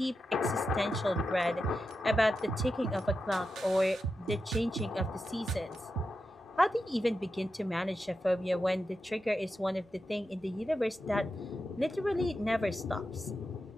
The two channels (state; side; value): normal; both; correlation 0.89